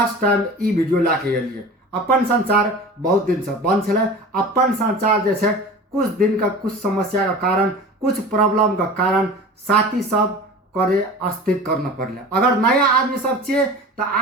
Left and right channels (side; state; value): both; normal; correlation 0.37